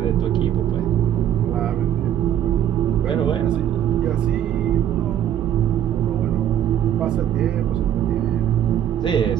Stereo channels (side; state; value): left; quieter; 10.6 dB